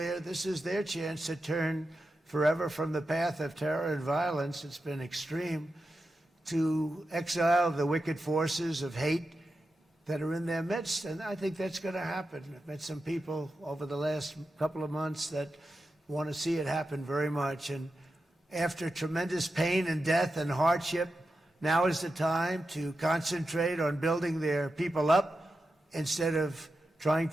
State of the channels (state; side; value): normal; both; correlation 0.90